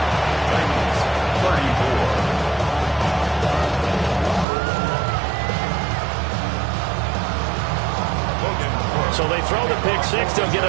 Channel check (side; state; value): left; drops out; at 4.5 s